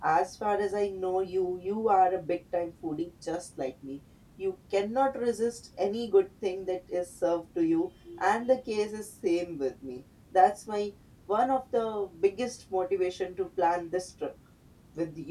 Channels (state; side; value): identical; both; correlation 1.00